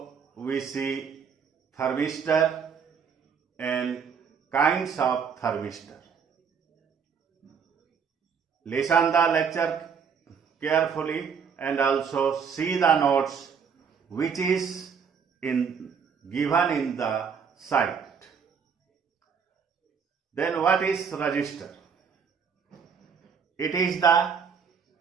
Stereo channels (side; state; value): left; quieter; 6.5 dB